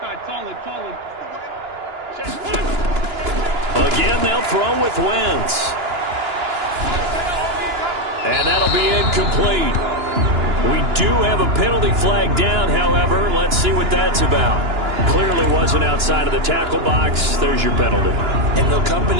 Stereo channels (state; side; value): late; left; 2.9 ms